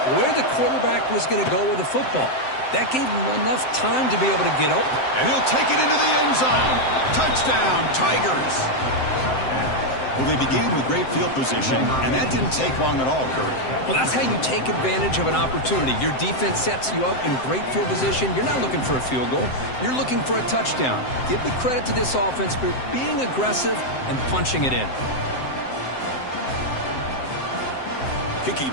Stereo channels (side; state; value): right; late; 7.7 ms